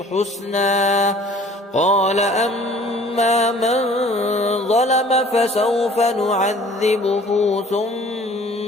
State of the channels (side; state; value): both; normal; correlation 0.51